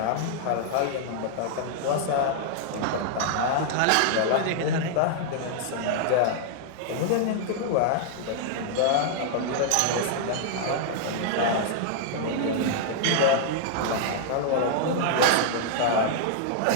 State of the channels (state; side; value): different; both; correlation -0.01